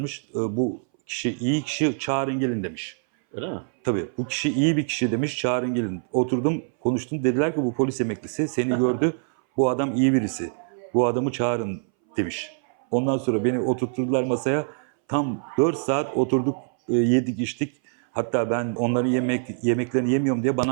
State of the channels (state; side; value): silent; left; 61 dB below the other